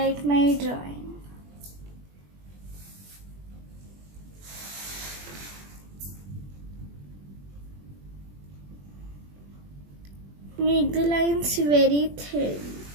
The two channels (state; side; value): late; left; 21 ms